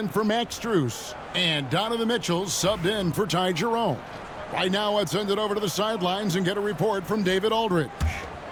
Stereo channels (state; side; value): identical; both; correlation 1.00